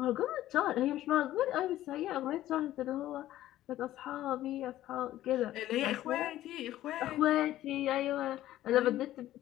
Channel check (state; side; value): quieter; right; 14.0 dB